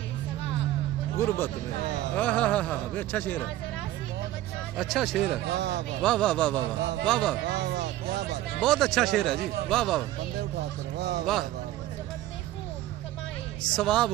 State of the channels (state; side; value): quieter; left; 14.6 dB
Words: सवाब गुर्बत में। अच्छा शेर है, अच्छा शेर है। वाह वाह वाह वाह वाह वाह वाह, बहुत अच्छा शेर है जी। वाह वाह वाह। सवाब